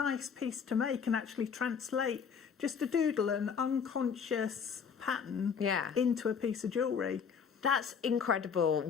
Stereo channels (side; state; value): right; quieter; 6.6 dB